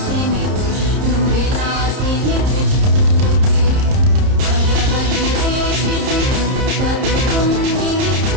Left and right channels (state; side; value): late; left; 30 ms